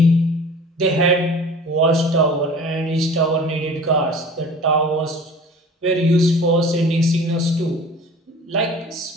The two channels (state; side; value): normal; both; correlation 0.43